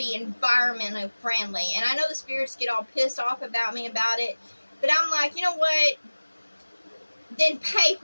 environmentally friendly. And I know the spirits get all pissed off about me about it, but I'm like, you know what? Then pay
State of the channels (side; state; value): both; inverted; correlation -1.00